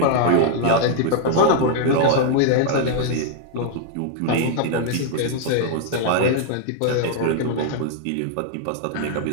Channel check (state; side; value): different; both; correlation 0.00